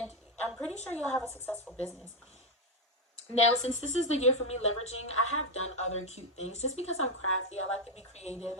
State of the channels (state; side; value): normal; both; correlation 0.05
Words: I'm pretty sure you'll have a successful business. Now, since this is the year for me leveraging, I have done other cute things just because I'm crafty. I like to be creative